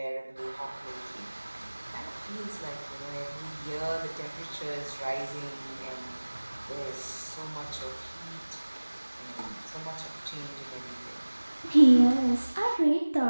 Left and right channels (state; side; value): inverted; both; correlation -1.00